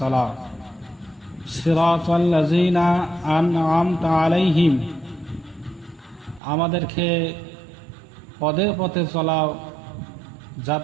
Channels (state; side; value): drops out; left; at 6.4 s